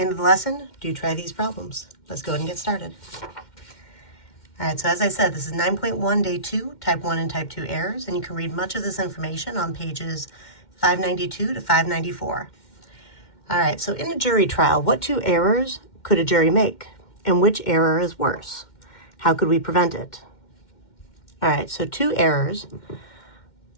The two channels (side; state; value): right; late; 2.1 ms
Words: end of the lesson, do try these problems. Let's go ahead and get started. All right, so as I said, this is 9.1, day 2, type 1 and type 2 errors, and you can read much of this information on pages 592 to 594. All right, so in a jury trial, what 2 errors could a jury make? And which error is worse? How could we prevent it? All right, so 2 errors.